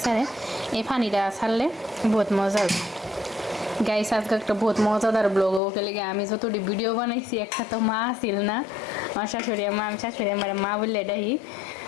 ছাড়ে এই পানিটা ছাড়লে বহুত মজা হবে গাইস আজকে একটা বহুত মজাদার ব্লগ ওকে লেগে আমি যতটি ভিডিও বানাইছি একটা তো মা আসিল না আমার শাশুড়ি মা আমি শাশুড়ি আমার মা বললে এটাই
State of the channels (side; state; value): right; drops out; at 5.6 s